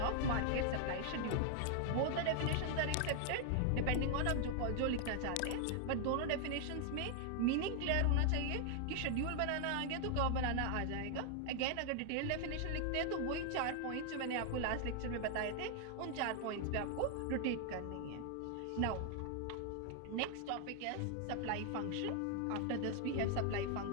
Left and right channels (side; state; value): both; different; correlation 0.00